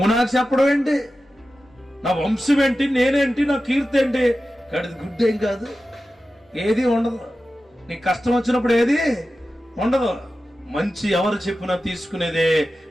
నాకు చెప్పడం ఏంటి, నా వంశం ఏంటి, నేనేంటి, నా కీర్తి ఏంటి, గడిది గుడ్డేం కాదు, ఏది ఉండదు. నీ కష్టం వచ్చినప్పుడు ఏది ఉండదు. మంచి ఎవరు చెప్పినా తీసుకునేదే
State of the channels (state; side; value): normal; both; correlation 0.93